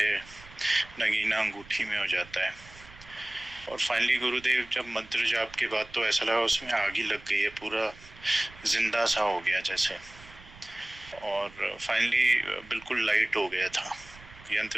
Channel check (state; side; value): noise; right; rumble, 21 dB below the sound